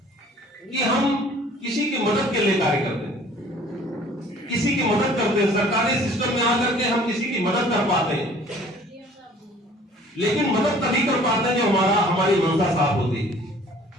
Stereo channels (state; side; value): normal; both; correlation 0.52